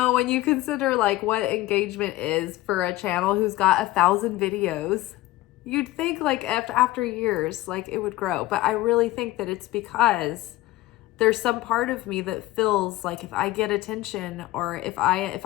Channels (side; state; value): right; quieter; 17.1 dB